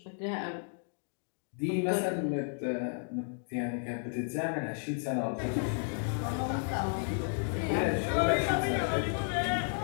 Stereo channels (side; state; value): right; silent; 56 dB below the other